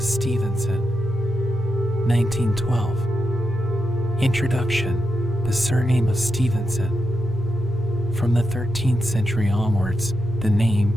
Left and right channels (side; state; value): both; normal; correlation 0.86